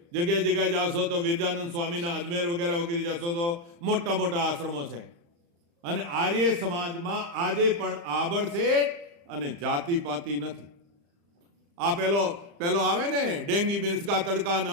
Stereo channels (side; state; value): left; late; 35 ms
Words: જગ્યાએ જાશો તો વિરજાનંદ સ્વામીના અજમેર વગેરે જશો તો મોટા મોટા આશ્રમો છે. અને આર્ય સમાજમાં આજે પણ આબડશેઠ અને જાતિપાતિ નથી. આ પેલો આવે ને ડેંગી મિર્ચકા તડકા ને